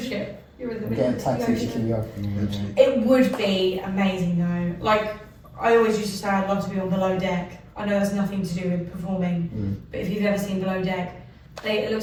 ship. You're in the middle of the ocean. It would be amazing though. Like, I always used to say I'd love to be on Below Deck. I know that's nothing to do with performing, but if you've ever seen Below Deck, it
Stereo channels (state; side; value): identical; both; correlation 1.00